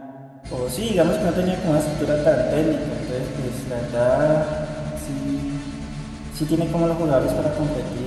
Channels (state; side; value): identical; both; correlation 1.00